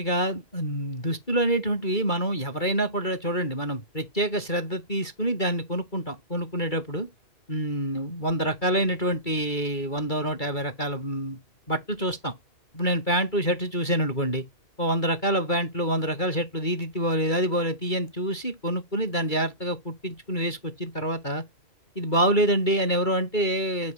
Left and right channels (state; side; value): late; right; 2.3 ms